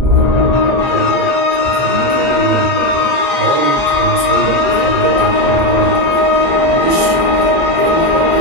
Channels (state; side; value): normal; both; correlation 0.11